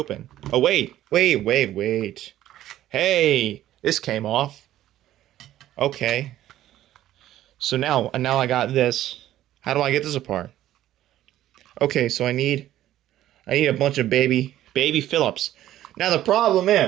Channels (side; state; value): left; quieter; 13.3 dB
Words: Oh wait. Hey, this came off. Okay. So now I got this. How do I get this apart? Okay, so I need a bunch of baby Phillips. Now the problem